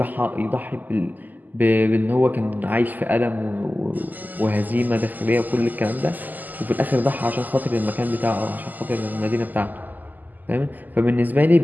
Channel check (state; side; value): late; left; 0.084 ms